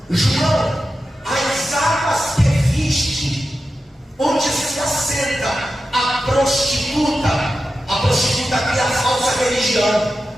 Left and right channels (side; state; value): both; normal; correlation 0.92